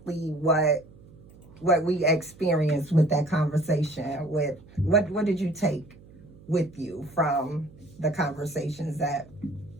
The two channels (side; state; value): right; noise; hum, 23 dB below the sound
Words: what we experienced with that conversation. With what did you take with you from the conversations that